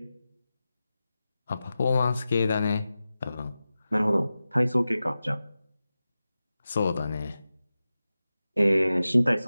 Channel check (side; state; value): both; inverted; correlation -0.94